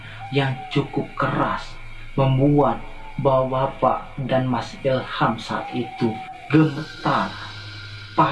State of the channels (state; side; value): identical; both; correlation 1.00